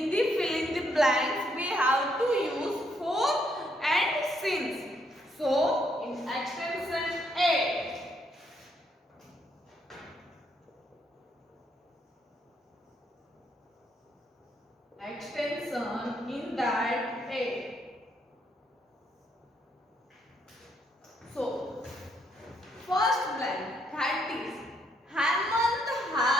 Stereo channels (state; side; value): normal; both; correlation 0.73